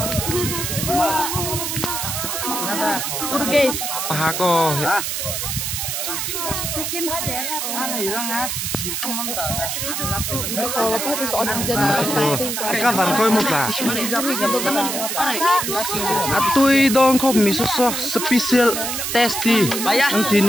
ha ko các bạn coi một là tôi don khop mi so special tasty anh tin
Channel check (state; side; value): noise; right; hiss, 2 dB below the sound